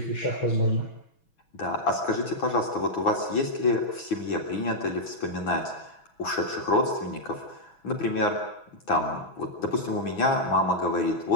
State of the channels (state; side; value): late; right; 6.1 ms